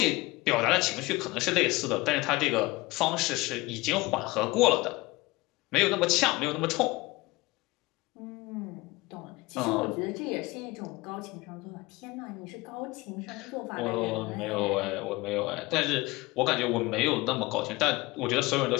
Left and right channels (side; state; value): right; quieter; 21.7 dB